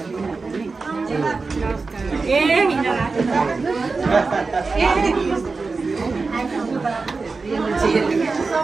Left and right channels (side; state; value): left; quieter; 4.1 dB